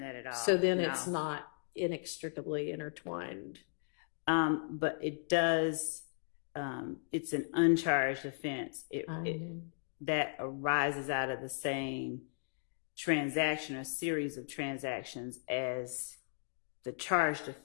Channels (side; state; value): right; silent; digital silence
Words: at all. So then No. it's not inextricably intertwined. But it does, it's an uncharged offense. That arises out of the same transaction or series of transactions as the charged